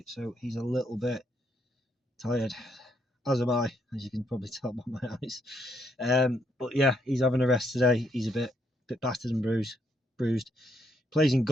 so he's a little bit tired. As am I, as you can probably tell by my eyes. But yeah, he's having a rest today. He's a bit battered and bruised. Plays in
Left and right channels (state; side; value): normal; both; correlation 0.74